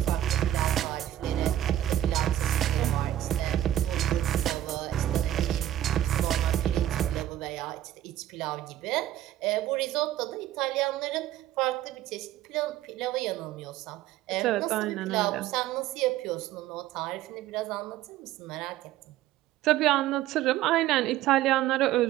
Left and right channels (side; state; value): left; quieter; 12.9 dB